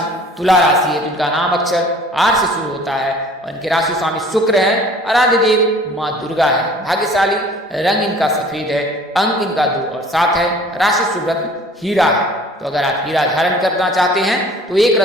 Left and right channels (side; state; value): both; normal; correlation 0.50